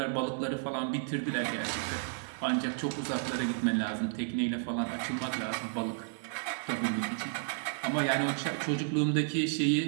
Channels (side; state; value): left; silent; digital silence